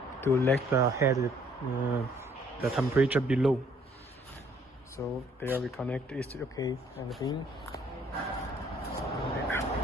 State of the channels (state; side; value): normal; both; correlation 0.62